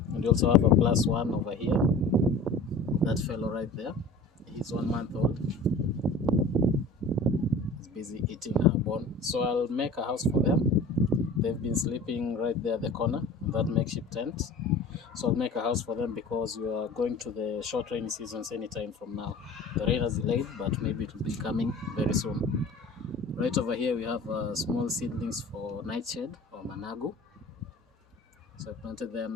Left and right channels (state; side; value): quieter; right; 3.0 dB